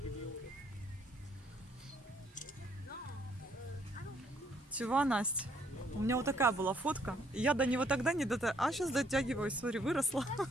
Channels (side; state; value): both; normal; correlation 0.67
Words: Чего, Настя? У меня вот такая была фотка. И я до него тогда не дотягивалась. А сейчас дотягиваюсь. Смотри, выросла.